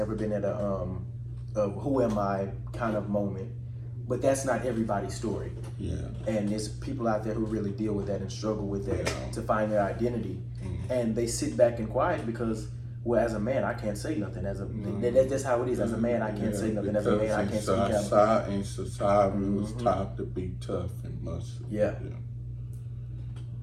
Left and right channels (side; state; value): both; identical; correlation 1.00